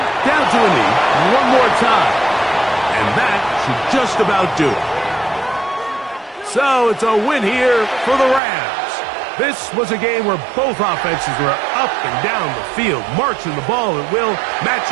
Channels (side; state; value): left; drops out; at 8.4 s